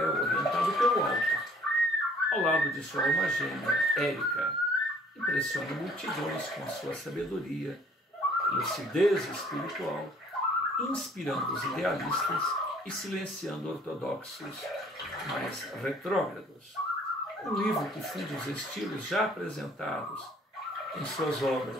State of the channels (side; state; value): both; normal; correlation 0.57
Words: orientado pelo alto, ao lado de sua alma gêmea, Érica, impressiona multidões com sua sabedoria, lucidez espiritual, inspirando os idealistas e silenciando ortodoxos mais retrógrados. Um livro que funde os estilos já apresentados em suas